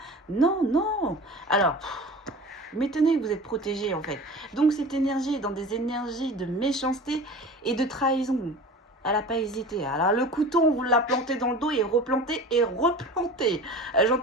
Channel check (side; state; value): both; normal; correlation 0.37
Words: Non, non. Alors, m'étonnez que vous êtes protégés en fait. Donc cette énergie est dans des énergies de méchanceté et de trahison. Elle n'a pas hésité. Alors le couteau, on vous l'a planté dans le dos et replanté et replanté.